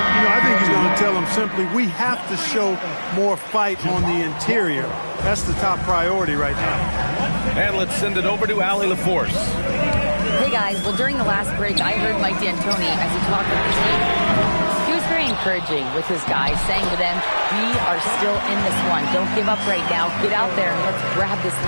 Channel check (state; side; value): inverted; both; correlation -1.00